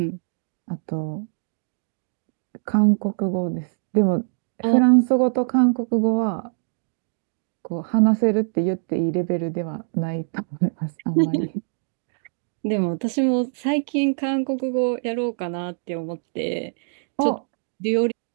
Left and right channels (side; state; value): left; silent; digital silence